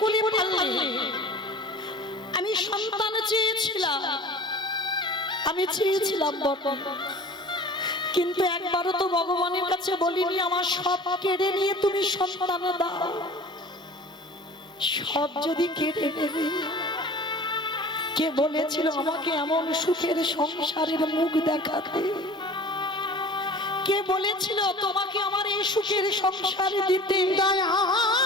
করে পারলে? আমি সন্তান চেয়েছিলাম, আমি চেয়েছিলাম বটে, কিন্তু একবারও তো ভগবানের কাছে বলিনি আমার সব কেড়ে নিয়ে তুমি সন্তান দাও। সব যদি কেড়ে নেবে, কে বলেছিল আমাকে এমন সুখের সংসারের মুখ দেখাতে? কে বলেছিল তোমাকে আমার এই সুখের সংসারে দিতে?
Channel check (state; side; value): normal; both; correlation 0.42